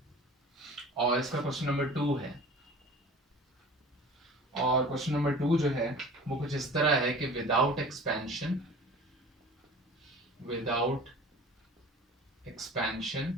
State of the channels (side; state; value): both; normal; correlation 0.42